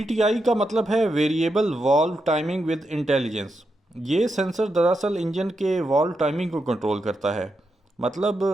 ٹی آئی کا مطلب ہے variable valve timing with intelligence. یہ سینسر دراصل انجن کے والو ٹائمنگ کو کنٹرول کرتا ہے، مطلب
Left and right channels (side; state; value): both; normal; correlation 0.85